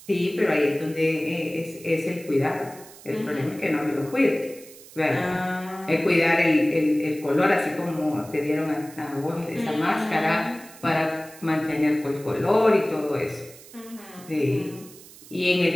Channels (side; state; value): right; noise; hiss, 20 dB below the sound